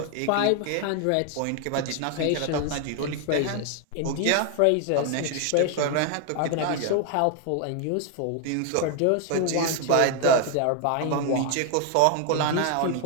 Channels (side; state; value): both; different; correlation 0.01